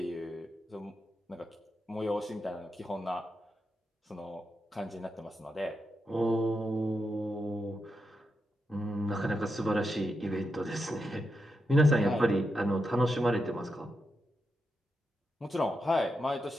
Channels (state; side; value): normal; both; correlation 0.86